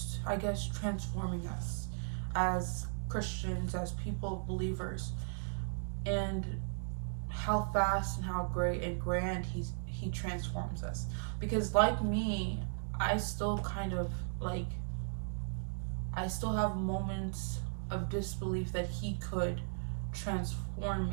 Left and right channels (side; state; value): left; silent; digital silence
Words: I guess, transforming us as Christians, as people, believers, and how fast and how great and grand he transforms us. Because like me, I still kind of like, I still have moments of disbelief that he could transform